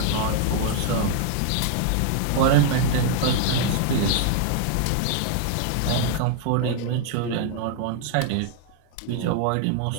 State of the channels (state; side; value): different; both; correlation 0.00